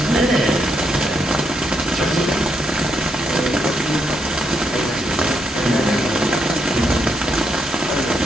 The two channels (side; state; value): both; normal; correlation 0.79